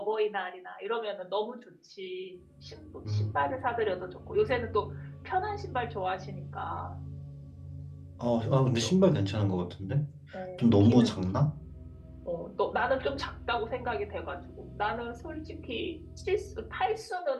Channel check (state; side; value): identical; both; correlation 1.00